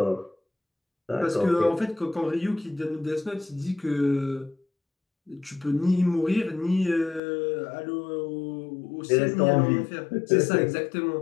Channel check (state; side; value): drops out; right; at 7.2 s